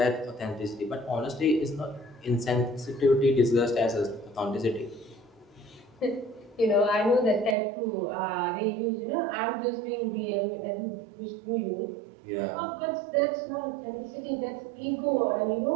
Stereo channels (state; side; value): drops out; left; at 7.6 s